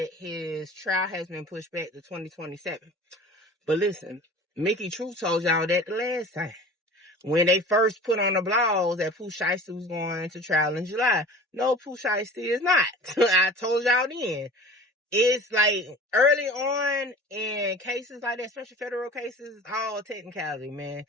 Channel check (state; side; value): normal; both; correlation 0.40